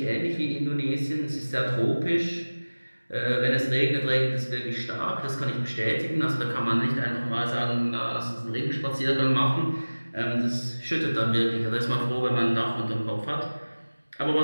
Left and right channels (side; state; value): both; inverted; correlation -1.00